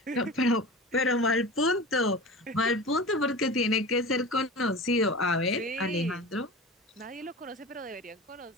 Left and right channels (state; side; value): normal; both; correlation 0.33